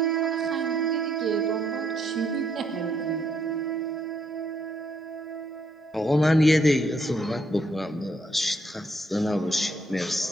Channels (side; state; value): both; normal; correlation 0.72